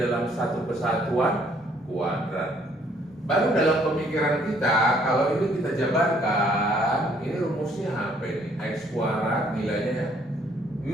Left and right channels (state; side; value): normal; both; correlation 0.64